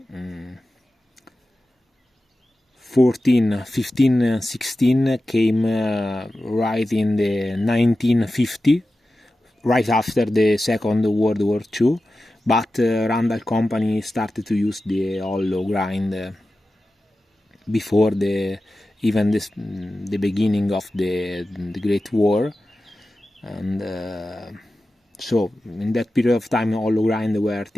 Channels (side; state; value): both; normal; correlation 0.94